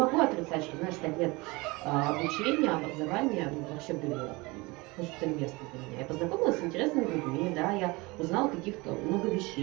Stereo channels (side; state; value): left; quieter; 24.2 dB